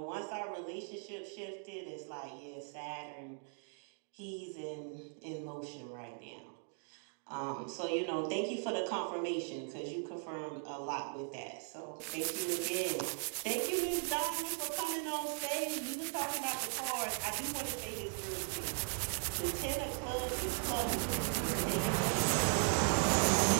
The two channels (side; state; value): left; silent; 52 dB below the other